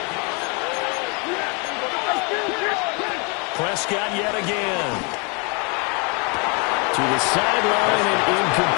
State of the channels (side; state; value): right; quieter; 32.8 dB